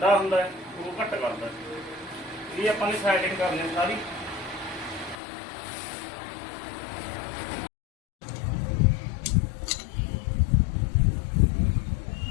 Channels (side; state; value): right; drops out; at 5.2 s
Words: ਹੁੰਦਾ ਹੈ ਉਦੋਂ ਘੱਟ ਕਰਦਾ। ਇਹ ਆਪਾਂ ਨੇ ਸੈਟਿੰਗ ਕਰਨੀ ਸਾਰੀ।